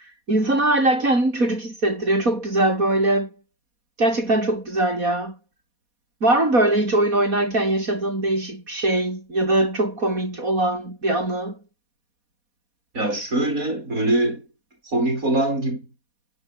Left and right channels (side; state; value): left; late; 4.2 ms